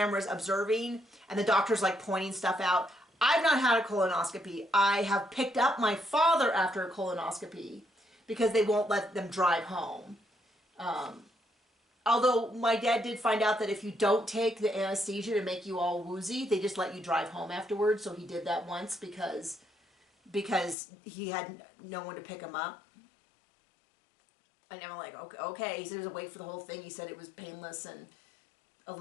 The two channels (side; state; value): right; drops out; at 20.8 s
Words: observing, and the doctor's pointing stuff out. I've not had a colonoscopy. I have picked up my father after a colonoscopy because they won't let them drive home. Although my dad did find out that if you don't take the anesthesia to make you all woozy, they just let you drive home afterwards. So he did that once because he had no one to pick him up. And I'm like, okay. He said he was awake for the whole thing. He said it was painless and a